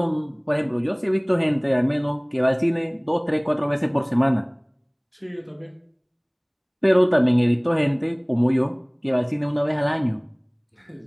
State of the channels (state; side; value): identical; both; correlation 1.00